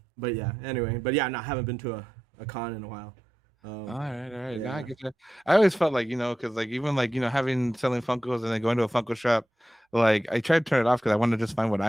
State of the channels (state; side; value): normal; both; correlation 0.90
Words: But yeah, anyway, no, I haven't been to a con in a while. all right. Yeah. Now I get you. I always felt like, you know, because like even like, you know, having selling Funkos and then going to a Funko shop, like I tried to turn it off because I wanted to just find what